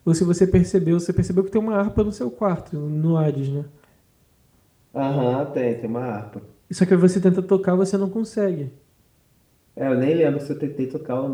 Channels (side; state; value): both; identical; correlation 1.00